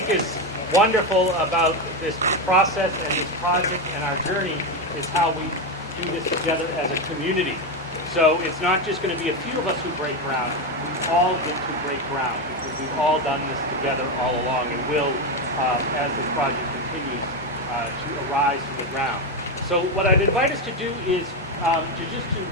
is wonderful about this process and this project and our journey is how we do this together as a community. So it's not just going to be a few of us who break ground, we all get to break ground because we've all done this together all along and will, as this project continues, to arise from the ground. So what I'd invite us to do is to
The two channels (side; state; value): both; normal; correlation 0.11